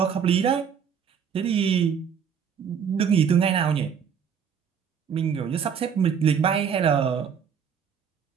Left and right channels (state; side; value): quieter; left; 7.3 dB